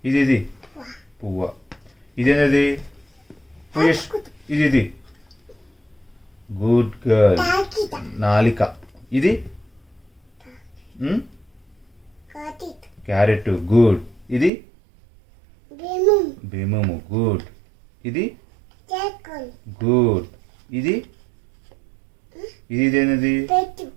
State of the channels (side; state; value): left; drops out; at 14.5 s